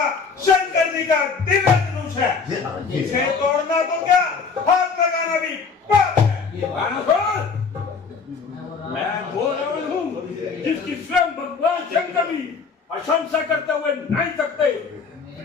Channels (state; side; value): quieter; right; 5.3 dB